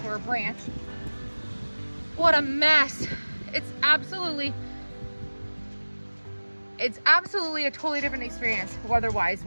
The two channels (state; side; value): inverted; both; correlation -1.00